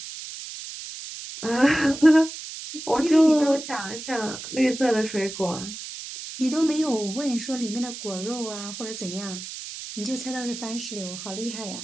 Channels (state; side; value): noise; right; hiss, 10 dB below the sound